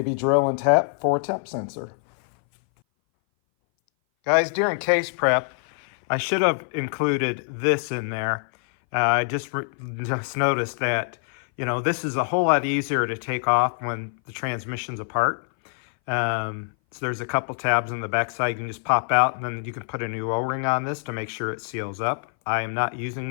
drill and tap for a temp sensor. Guys, during case prep, I should have included this in there. I just noticed that, this is a whole lot easier to take off when the transmission's apart. So there's a couple tabs on the back side you can just pop out, and then you can put a new O-ring on this to make sure it seals up. I am not using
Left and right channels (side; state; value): right; silent; 59 dB below the other